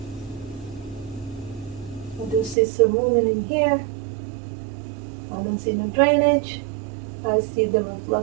I do see some movement in here. I don't see no drainage. I see the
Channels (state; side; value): drops out; left; at 2.6 s